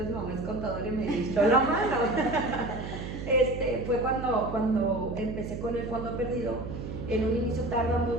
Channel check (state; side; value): noise; right; hum, 7 dB below the sound